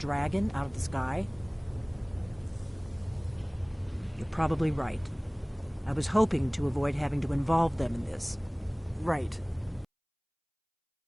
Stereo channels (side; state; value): both; identical; correlation 1.00